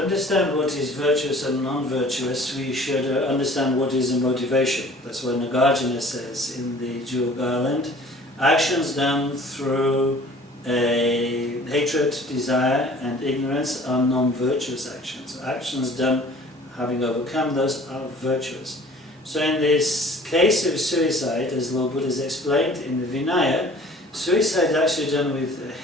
understand what is virtuous and non-virtuous, we should understand what is a motivation. That's what Nagarjuna says in the Jewel Garland. Actions done through hatred, desire and ignorance are non-virtuous actions. Actions done having overcome those are virtuous. So in this case of suicide, as Lord Buddha has explained in the Vinaya, suicide is actually done with a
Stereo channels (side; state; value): both; normal; correlation 0.49